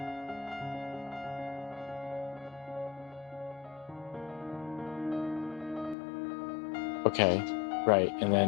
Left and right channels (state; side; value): drops out; right; at 6.0 s